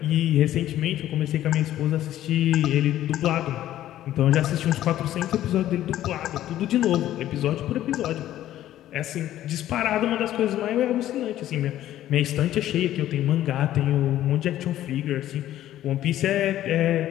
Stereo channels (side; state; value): right; quieter; 13.0 dB